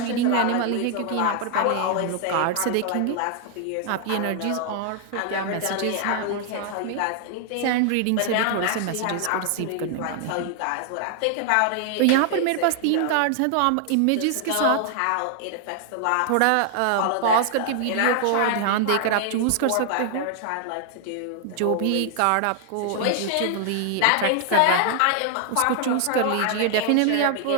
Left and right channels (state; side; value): different; both; correlation 0.00